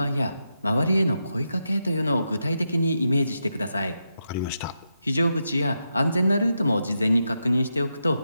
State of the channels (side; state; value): both; inverted; correlation -0.85